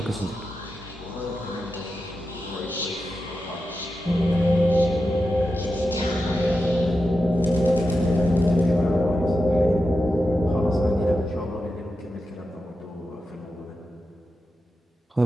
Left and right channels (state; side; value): normal; both; correlation 0.90